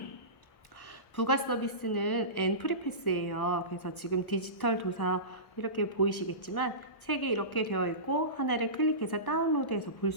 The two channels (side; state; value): right; late; 1.2 ms